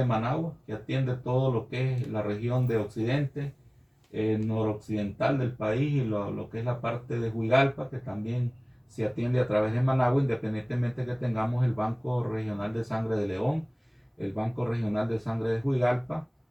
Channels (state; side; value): identical; both; correlation 1.00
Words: Managua, que atiende todo lo que es la región de Occidente, noroccidental del país y lo que es la parte de Huigalpa, que también se atiende a través de Managua, independientemente que tengamos el Banco Regional de Sangre de León, el Banco Regional de Sangre de Huigalpa,